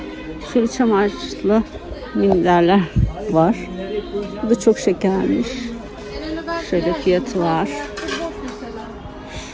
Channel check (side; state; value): both; identical; correlation 1.00